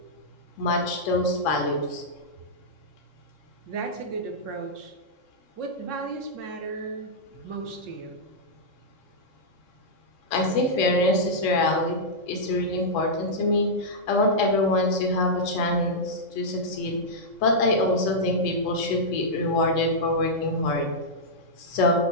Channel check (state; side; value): late; right; 3.7 ms